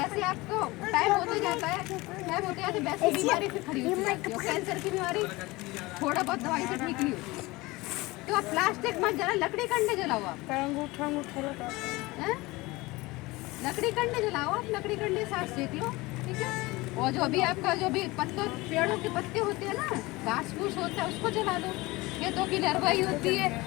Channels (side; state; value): right; quieter; 21.6 dB